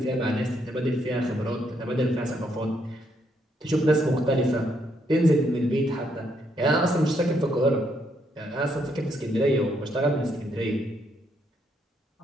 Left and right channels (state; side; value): normal; both; correlation 0.75